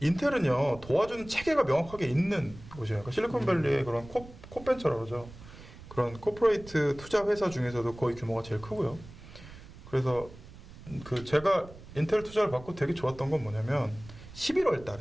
도와주는 체계가 명확하게 있는 곳이에요. 그러니까 실리콘밸리의 그런 코벤처라고 그러죠. 그런 코퍼레이트 투자 회사 중에서도 거의 규모가 제일 크고요. 그래서 그 제가 인텔 투자를 받고 되게 좋았던 건 뭐냐면 11월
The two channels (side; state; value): right; noise; rumble, 18 dB below the sound